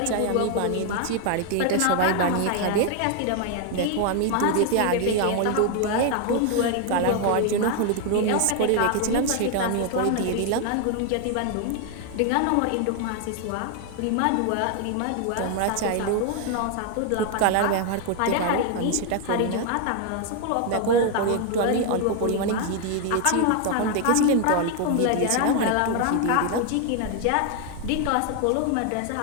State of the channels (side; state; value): both; different; correlation 0.00